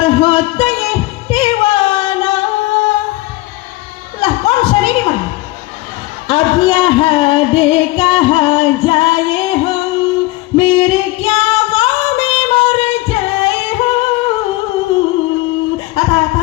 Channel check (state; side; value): quieter; right; 19.8 dB